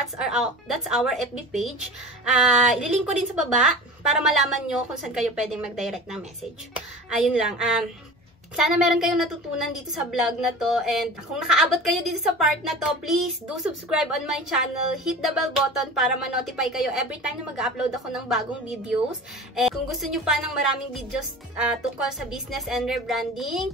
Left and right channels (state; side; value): normal; both; correlation 0.36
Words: our FB page. Ililink ko din sa baba para malaman nyo kung saan kayo pwedeng mag-direct ng message. Ayun lang. Sana meron kayong natutunan dito sa vlog na to, and kung nakaabot kayo dito sa part na to, please do subscribe on my channel, hit the bell button para ma-notify kayo every time na mag-upload ako ng bagong videos. And kung gusto nyo pa ng maraming videos tungkol sa business and rebranding,